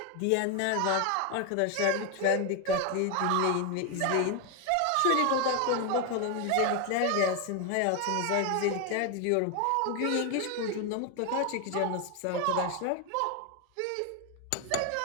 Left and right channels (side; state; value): both; different; correlation 0.01